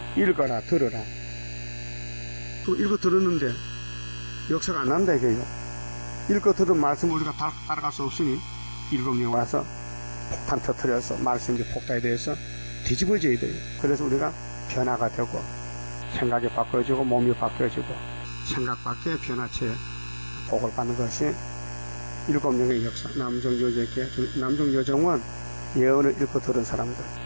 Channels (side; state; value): both; inverted; correlation -1.00